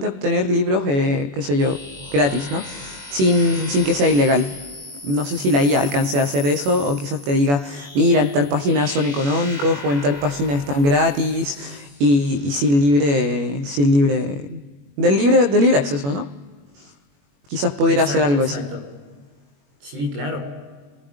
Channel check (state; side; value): late; left; 21 ms